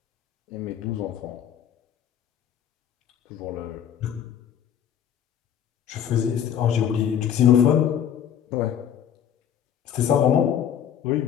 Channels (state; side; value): quieter; right; 9.2 dB